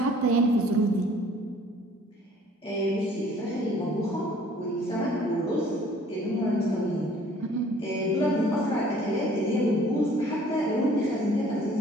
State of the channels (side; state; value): both; normal; correlation 0.55